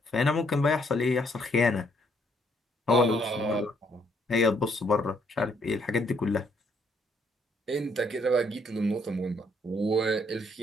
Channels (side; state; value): both; normal; correlation 0.69